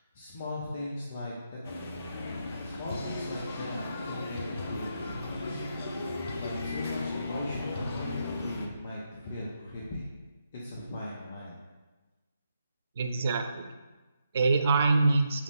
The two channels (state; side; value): inverted; both; correlation -0.81